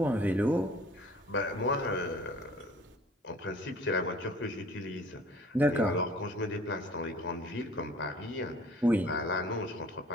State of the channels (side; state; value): both; normal; correlation 0.51